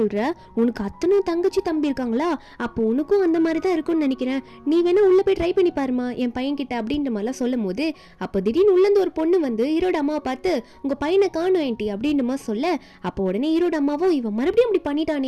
உனக்கு அத்தனை தங்கச்சி தம்பி இருக்காங்களா, அப்போ உனக்கும் அந்த மாதிரி தான் இருக்கும்னு நினைக்கிறேன், நீ வேணா உள்ள போய் ட்ரை பண்ணி பாருமா என் பையன் கிட்ட அப்படின்ற மாதிரிலாம் சொல்லும் போது அப்போ திடீர்னு உள்ளேருந்து ஒரு பொண்ணு வந்து ஹீரோட அம்மாவை பார்த்து உங்க பையனை காணும் ஏன்டி அப்படின்ற மாதிரி சொல்ல, அப்போ உடனே ஹீரோட அம்மாவும் இவன் மறுபடியும் இப்படி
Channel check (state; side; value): identical; both; correlation 1.00